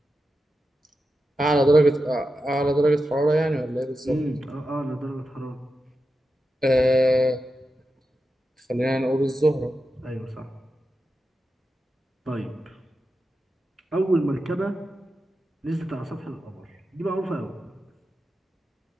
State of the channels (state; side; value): normal; both; correlation 0.90